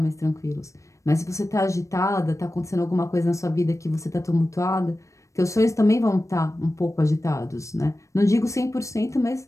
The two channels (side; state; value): right; late; 0.15 ms